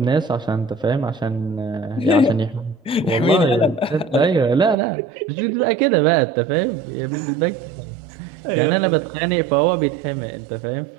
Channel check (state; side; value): drops out; left; at 4.8 s